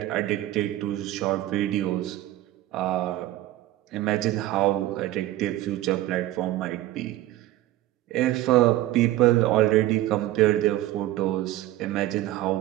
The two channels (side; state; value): left; quieter; 15.2 dB